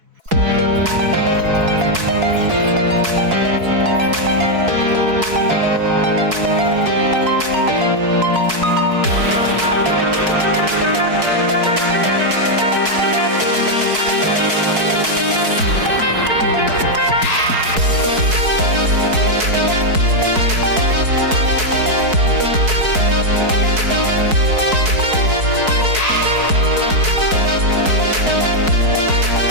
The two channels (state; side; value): late; left; 4.6 ms